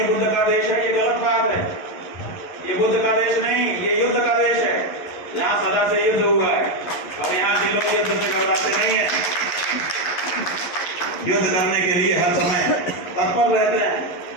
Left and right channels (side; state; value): right; late; 11 ms